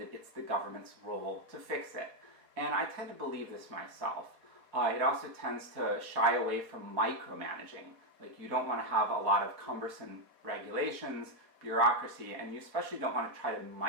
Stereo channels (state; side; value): late; left; 4.1 ms